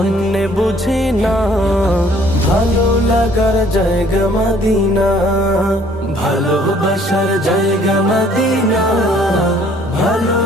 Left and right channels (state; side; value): normal; both; correlation 0.59